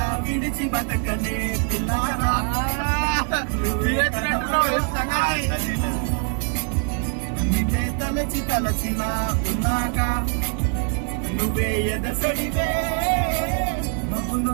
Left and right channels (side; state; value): left; quieter; 38.7 dB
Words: విడిచి బతకనే పిల్లారా. నిన్నే తలచి తలచిలా ఉన్నాగా, నువ్వే ఎదసడివే.